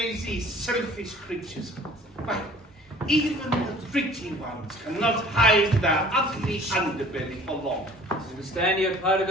selfish creatures. Why? Even the pretty ones cannot hide their ugly underbelly for long. I understand you're part of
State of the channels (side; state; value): both; normal; correlation 0.50